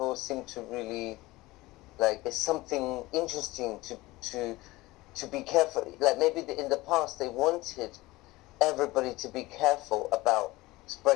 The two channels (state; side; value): quieter; right; 20.0 dB